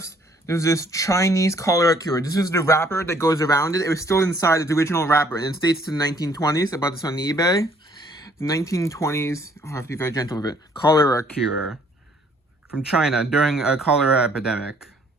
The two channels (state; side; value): normal; both; correlation 0.62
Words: there's this Chinese cholera cure. This is the wrapper that goes around it. It was still inside its original wrapper, and it dates to the 1920s. I bought this on eBay. The 1920s, I have to be very gentle with it. Cholera cure from China during a cholera epidemic.